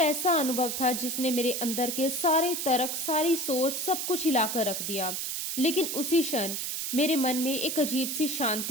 अनुभव था जिसने मेरे अंदर के सारे तर्क, सारी सोच, सब कुछ हिलाकर रख दिया। लेकिन उसी क्षण मेरे मन में एक अजीब सी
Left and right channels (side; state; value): right; noise; hiss, 3 dB below the sound